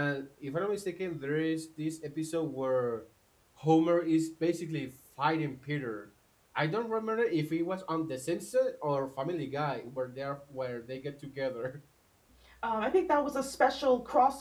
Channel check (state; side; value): identical; both; correlation 1.00